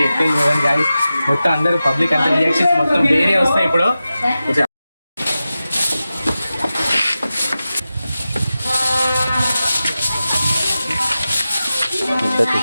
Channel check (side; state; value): both; inverted; correlation -0.93